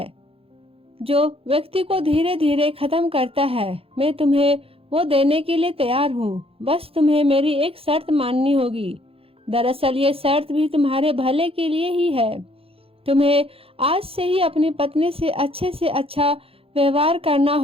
जो व्यक्ति को धीरे धीरे खत्म करता है। मैं तुम्हें वो देने के लिए तैयार हूँ, बस तुम्हें मेरी एक शर्त माननी होगी। दरअसल ये शर्त भी तुम्हारे भले के लिए ही है। तुम्हें आज से ही अपनी पत्नी से अच्छा व्यवहार करना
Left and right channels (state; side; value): late; left; 0.27 ms